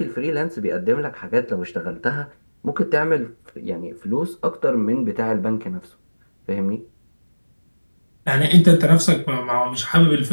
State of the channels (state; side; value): inverted; both; correlation -1.00